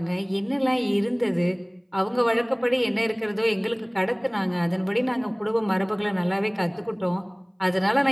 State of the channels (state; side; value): identical; both; correlation 1.00